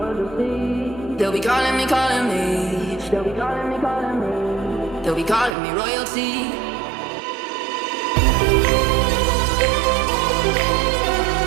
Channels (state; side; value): drops out; left; at 5.6 s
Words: you'll see. They'll be calling me, calling me. They'll be calling me, calling me. They'll be calling me royalty.